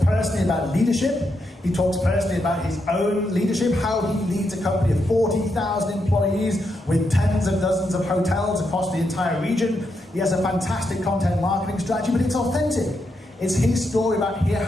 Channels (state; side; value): normal; both; correlation 0.82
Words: personally about leadership. He talks personally about his own leadership, how he leads a company of 40,000 employees with tens of dozens of hotels across the entire region. He has a fantastic content marketing strategy, but it's authentic. It's his story about